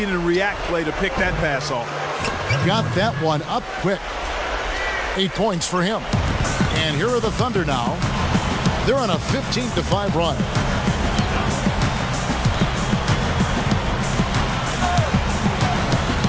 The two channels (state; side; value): identical; both; correlation 1.00